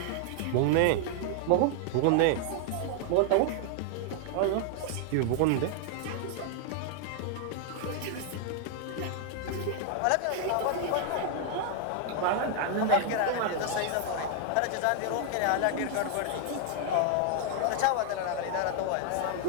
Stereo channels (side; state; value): both; different; correlation 0.00